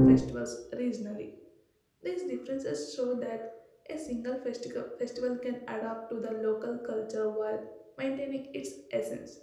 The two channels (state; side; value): identical; both; correlation 1.00